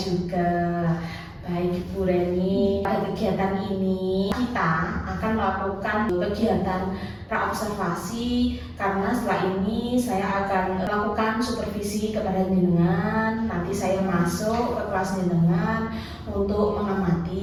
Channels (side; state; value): both; identical; correlation 1.00